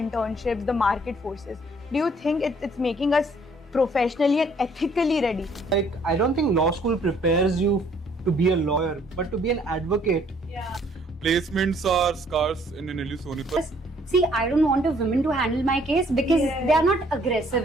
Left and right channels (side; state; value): both; normal; correlation 0.62